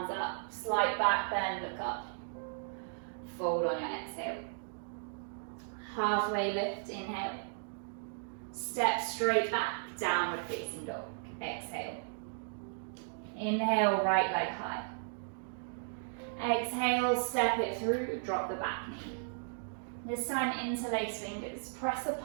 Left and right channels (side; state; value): left; silent; digital silence